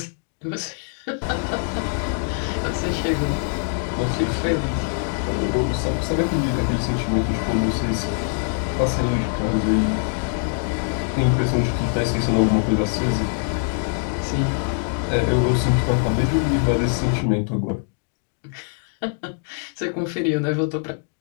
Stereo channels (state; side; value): silent; right; digital silence